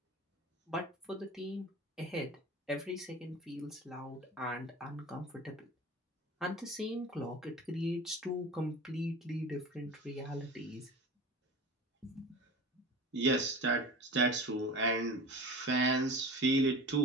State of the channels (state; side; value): normal; both; correlation 0.36